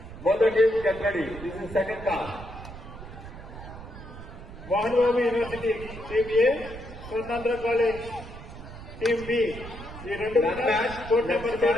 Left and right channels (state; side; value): noise; right; rumble, 13 dB below the sound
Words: Both the teams get ready. This is second call. Mohan Babu university team A Swarnandhra college team B ఈ రెండు That match court number 2